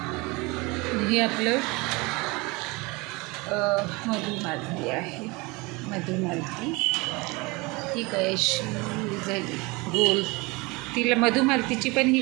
हे आपलं मधुमालती आहे. मधुमालती ही काय अशी झाली गोल. तिला मधुमालतीची पण ही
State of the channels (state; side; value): quieter; left; 25.3 dB